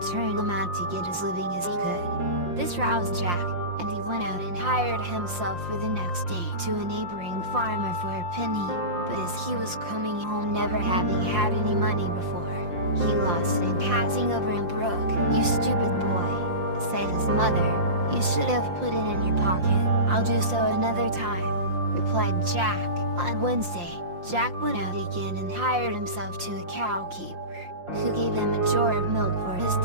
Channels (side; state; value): left; late; 5.7 ms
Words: turn him out to get as living as he could. This roused Jack, and he went out and hired himself for the next day to a neighboring farmer for a penny. But as he was coming home, never having had any money before, he lost it passing over a brook. "You stupid boy," said his mother, "you should have put it in your pocket." "I'll do so another time," replied Jack. On Wednesday, Jack went out again and hired himself to a cow keeper, who gave him a jar of milk for his